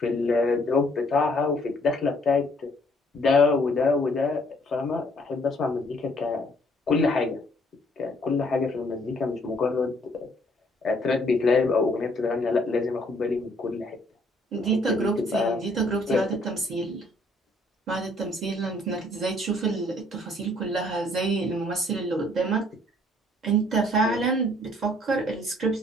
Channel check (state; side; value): normal; both; correlation 0.63